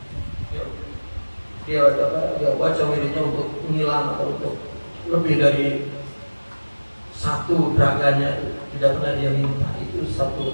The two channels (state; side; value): inverted; both; correlation -1.00